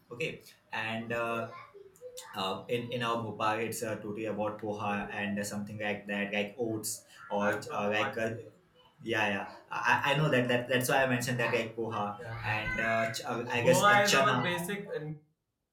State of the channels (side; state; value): both; identical; correlation 1.00